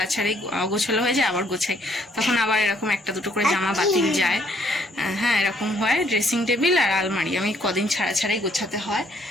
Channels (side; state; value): both; normal; correlation 0.66